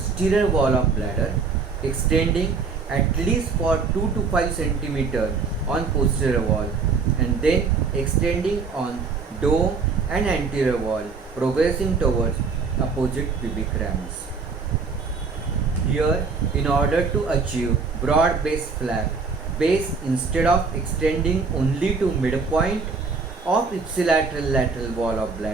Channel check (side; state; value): left; quieter; 4.9 dB